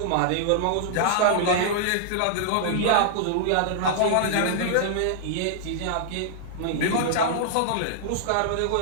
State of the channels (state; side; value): different; both; correlation -0.01